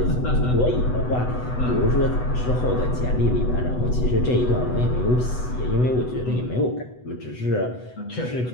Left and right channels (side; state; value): right; late; 8.0 ms